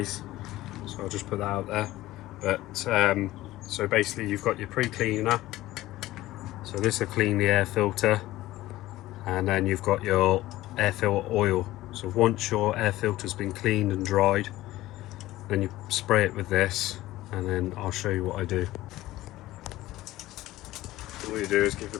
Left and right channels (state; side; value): quieter; right; 16.4 dB